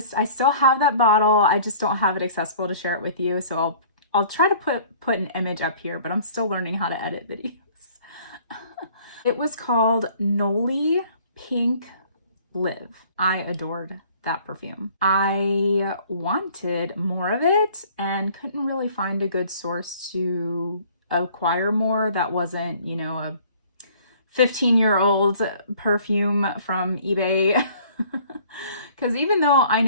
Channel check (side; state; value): both; inverted; correlation -0.53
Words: I still have that bottle. I just don't have it accessible to share it with you, so I'll try to put an image up here, but I'm still learning how to edit videos. It was called Nollie Pink Live. I adored that perfume. I wanted more of it and couldn't really find a good source to acquire more that wasn't, you know, a 15-year-old perfume from eBay. Because even though I